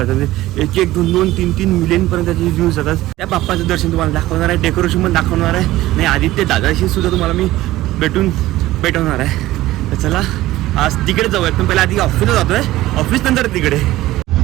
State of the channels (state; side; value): quieter; left; 16.4 dB